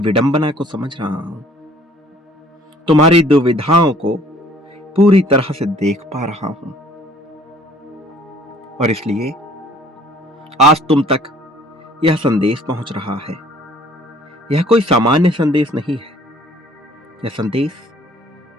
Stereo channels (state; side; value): normal; both; correlation 0.56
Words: को समझ रहा हूं, तुम्हारी दुविधाओं को पूरी तरह से देख पा रहा हूं, और इसलिए आज तुम तक यह संदेश पहुंच रहा है। यह कोई सामान्य संदेश नहीं है, यह संदेश